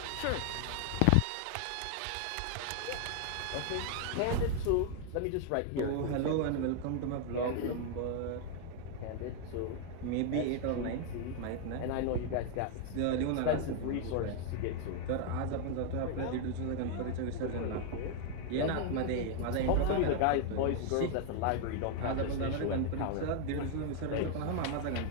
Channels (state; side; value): different; both; correlation 0.00